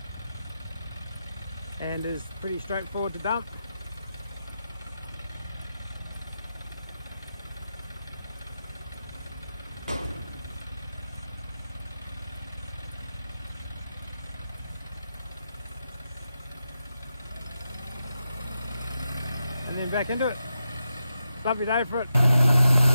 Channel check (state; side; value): inverted; both; correlation -0.88